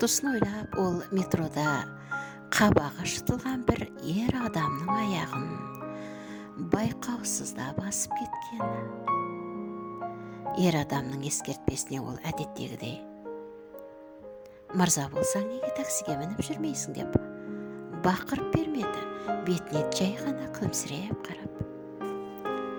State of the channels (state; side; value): identical; both; correlation 1.00